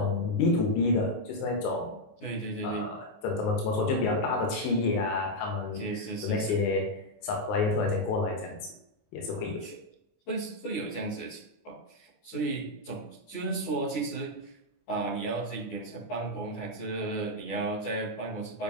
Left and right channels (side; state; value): right; late; 19 ms